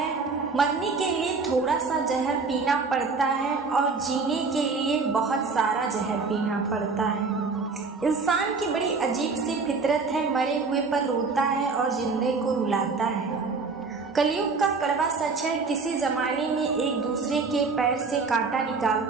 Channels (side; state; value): left; quieter; 4.4 dB